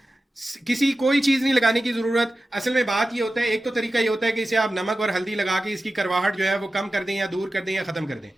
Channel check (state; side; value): normal; both; correlation 0.94